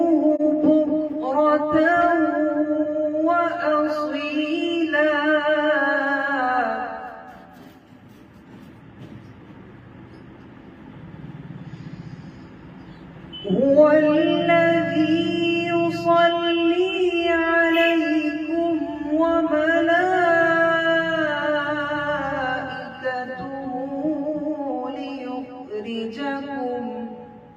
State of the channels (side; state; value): both; identical; correlation 1.00